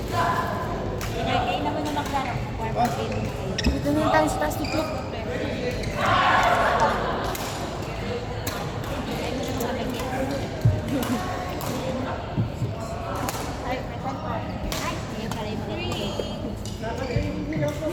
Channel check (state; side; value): identical; both; correlation 1.00